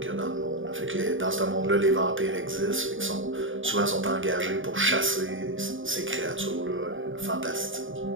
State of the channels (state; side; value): late; left; 0.57 ms